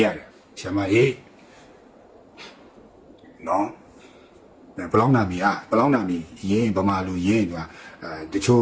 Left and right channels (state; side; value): identical; both; correlation 1.00